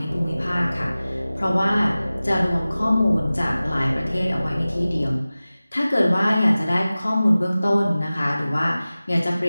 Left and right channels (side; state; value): both; inverted; correlation -0.97